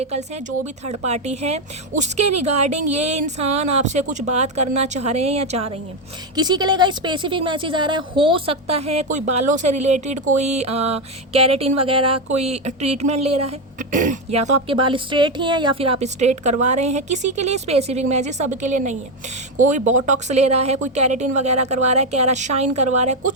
हैं, जो भी थर्ड पार्टी है, उसके रिगार्डिंग ये इंसान आपसे कुछ बात करना चाह रहे हैं या चाह रही हैं। किसी के लिए स्पेसिफिक मैसेज आ रहा है, हो सकता है कोई बालों से रिलेटेड कोई कैरेटिन वगैरह कोई ट्रीटमेंट ले रहा है, या तो आपके बाल स्ट्रेट ही हैं या फिर आप स्ट्रेट करवा रहे हैं। किसी के लिए स्पेसिफिक मैसेज, सबके लिए नहीं है। कोई बोटॉक्स ले रहा है, कोई कैरेटिन वगैरह करवा रहा है, कैरा शाइन करवा रहा है,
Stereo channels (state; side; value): normal; both; correlation 0.08